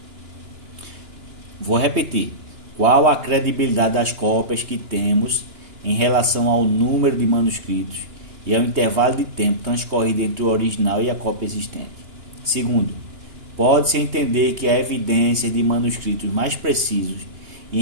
Vou repetir. Qual a credibilidade das cópias que temos em relação ao número de manuscritos e ao intervalo de tempo transcorrido entre o original e a cópia existente? Segundo, pode-se entender que há evidência de manuscritos mais precisos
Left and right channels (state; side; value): late; left; 2.9 ms